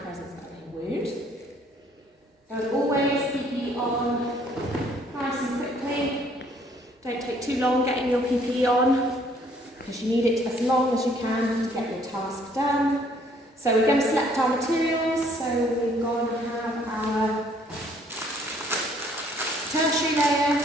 of a wound. As always, PPE on nice and quickly. Don't take too long getting your PPE on because you need it as long as you can to get your task done. So we're going to select our materials. So we're going to have our tertiary layer,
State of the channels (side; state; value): both; normal; correlation 0.62